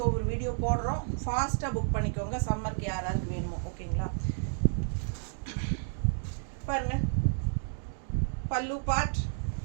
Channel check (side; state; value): left; silent; digital silence